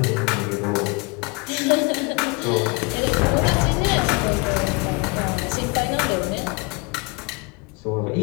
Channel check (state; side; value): quieter; right; 29.1 dB